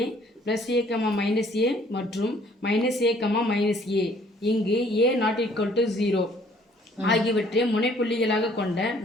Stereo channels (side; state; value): both; normal; correlation 0.59